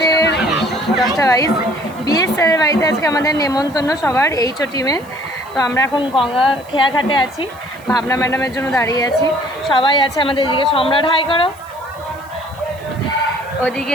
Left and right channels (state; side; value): noise; right; hiss, 25 dB below the sound